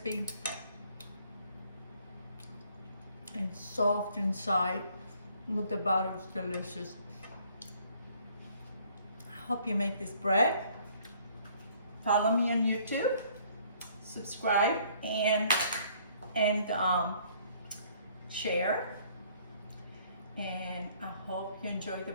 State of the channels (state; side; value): inverted; both; correlation -0.60